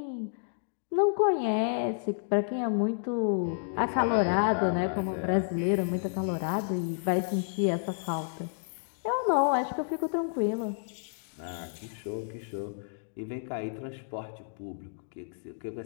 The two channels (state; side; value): silent; right; digital silence